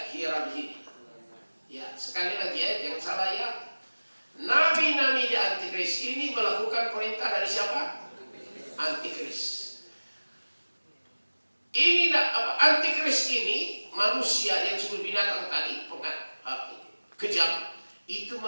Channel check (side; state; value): both; inverted; correlation -1.00